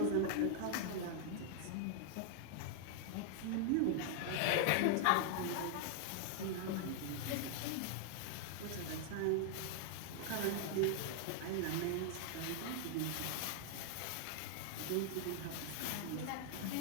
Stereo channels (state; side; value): different; both; correlation 0.00